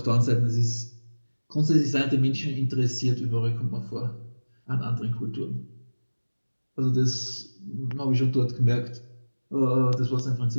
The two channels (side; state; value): both; inverted; correlation -1.00